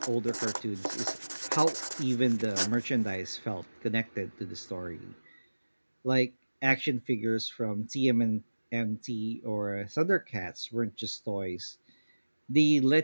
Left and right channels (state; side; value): inverted; both; correlation -1.00